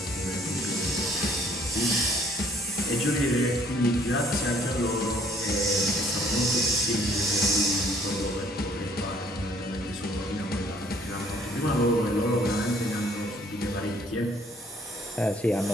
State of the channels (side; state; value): both; normal; correlation 0.61